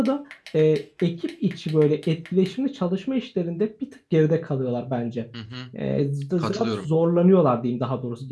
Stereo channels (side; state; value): both; identical; correlation 1.00